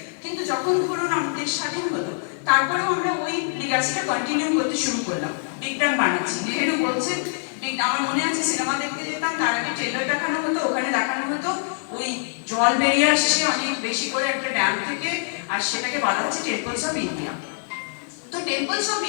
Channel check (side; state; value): right; silent; 63 dB below the other